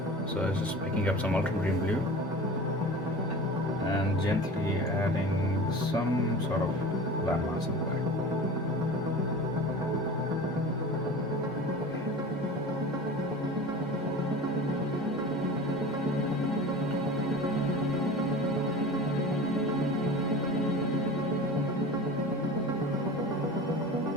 So it's just picking up some ultramarine blue and gently adding some sort of landmass in the back.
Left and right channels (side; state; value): both; normal; correlation 0.35